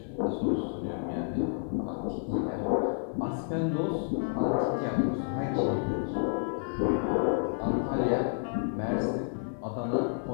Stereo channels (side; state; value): right; silent; 58 dB below the other